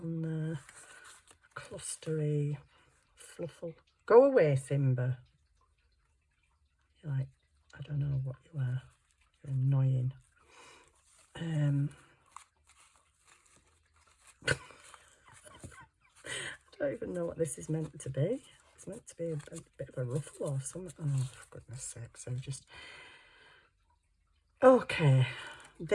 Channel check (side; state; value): both; identical; correlation 1.00